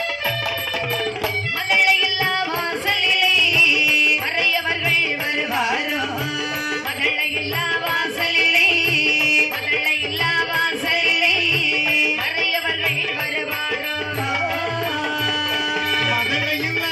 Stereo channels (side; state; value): both; identical; correlation 1.00